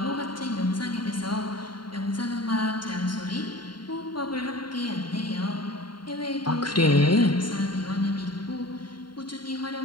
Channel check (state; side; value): late; right; 0.72 ms